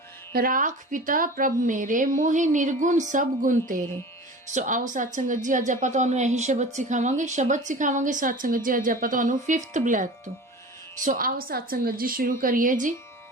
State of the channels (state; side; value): normal; both; correlation 0.37